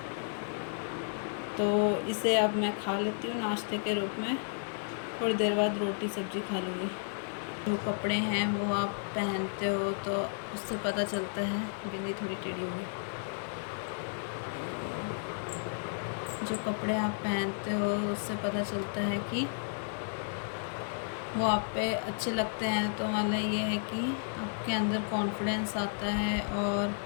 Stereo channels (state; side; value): silent; right; digital silence